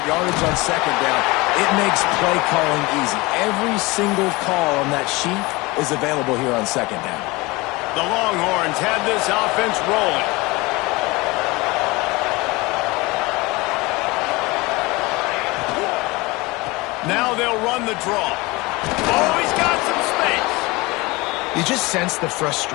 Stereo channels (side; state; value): right; quieter; 23.3 dB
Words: yardage on second down, it makes play calling easy. Every single call on that sheet is available here on second down. The Longhorns have this offense rolling. Now they'll run the draw. Oh, he's got some space. You just sense the